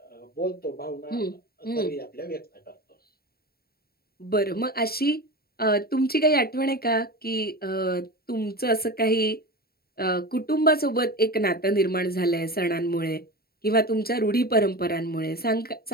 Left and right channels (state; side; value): late; right; 0.45 ms